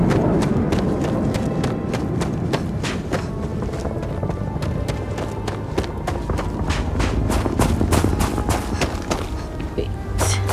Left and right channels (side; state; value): both; identical; correlation 1.00